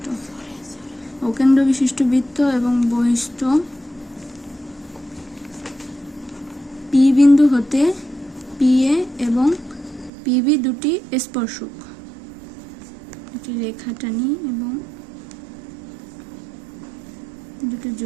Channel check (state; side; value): drops out; left; at 10.1 s